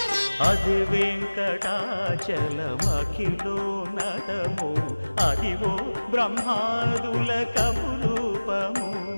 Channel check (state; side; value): inverted; both; correlation -1.00